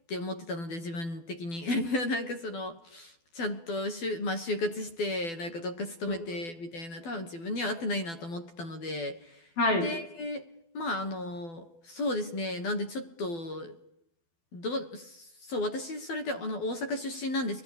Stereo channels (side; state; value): right; late; 12 ms